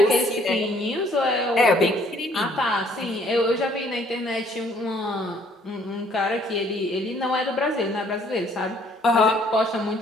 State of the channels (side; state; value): both; normal; correlation 0.62